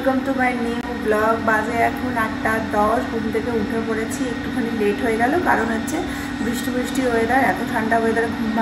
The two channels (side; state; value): both; identical; correlation 1.00